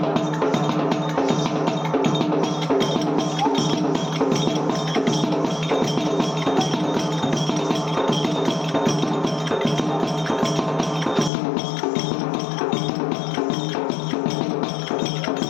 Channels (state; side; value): drops out; right; at 11.3 s